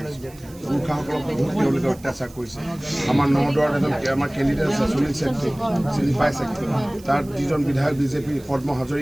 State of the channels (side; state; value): right; noise; hiss, 23 dB below the sound